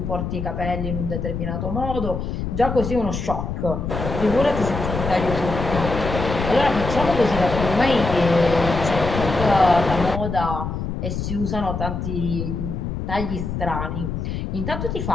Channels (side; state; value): left; noise; rumble, 4 dB below the sound